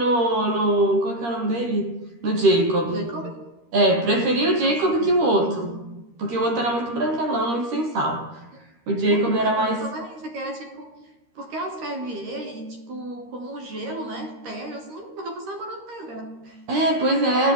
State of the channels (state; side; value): late; left; 13 ms